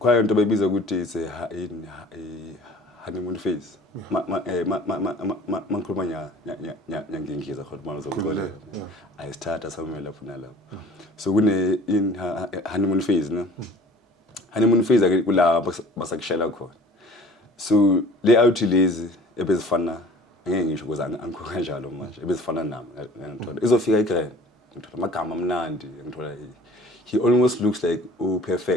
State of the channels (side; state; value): both; normal; correlation 0.48